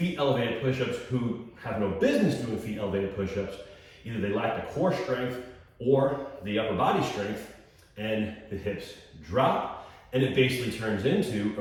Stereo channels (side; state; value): both; identical; correlation 1.00